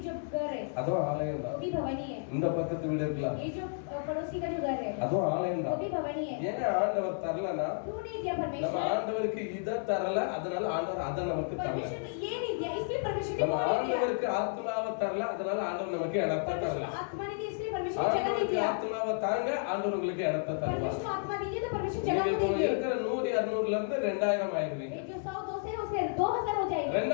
जो घर है அதுவும் ஆலயம் वो தான். भी भवनी है. இந்த பக்கத்து வீடு இருக்கலாம், ये जो पड़ोसी का जो घर है அதுவும் ஆலயம் वो தான். भी भवनी है. ஏன் ஆண்டவர் தரலனா, क्यों नहीं दिया நம்ம परमेश्वर? ஆண்டவருக்கு இத தரல, அதனால ஆண்டவர் அத நமக்கு தரல. परमेश्वर ने ये नहीं दिया इसलिए परमेश्वर ने நம்ம वो नहीं दिया. ஆண்டவருக்கு ஆத்மாவை தரல, அதனால ஆண்டவர் நமக்கு இடத்தை தரல. परमेश्वर आत्मा नहीं दी इसलिए परमेश्वर जगह नहीं ஆண்டவருக்கு दिया. ஆத்மாவை தாங்க, ஆண்டவர் உங்களுக்கு இடத்தை தருவார். परमेश्वर आत्मा दीजिए तो परमेश्वर நீங்க जगह को இப்போ देंगे. இருக்கிற 100, 200ல இருந்து 2000 ஆயிருவீங்க. एक जो 100 200 है उसमें 2000 हो जाएगा.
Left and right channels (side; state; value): right; silent; 56 dB below the other